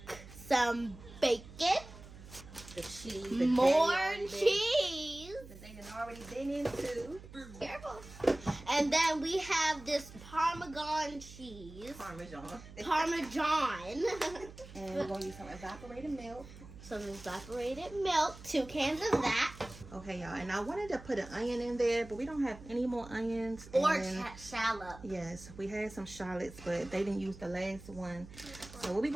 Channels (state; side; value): noise; right; hum, 17 dB below the sound